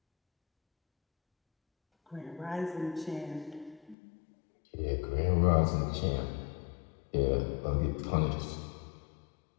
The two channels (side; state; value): right; drops out; at 4.0 s